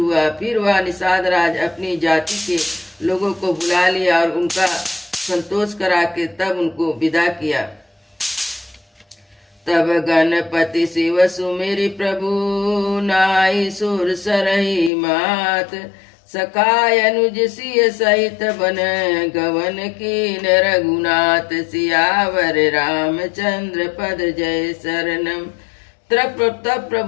फिर वह निषाद राज अपनी जाति के लोगों को बुला लिया और उनका संतोष करा के तब उनको विदा किया। तब गणपति शिव सुमेरि प्रभु, नाई सुर सरही मात। सखाय अनुज सिय सहित बन, गवन कीन रघुनाथ। सियावर रामचंद्र पद जय शरणम। तब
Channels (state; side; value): drops out; right; at 14.9 s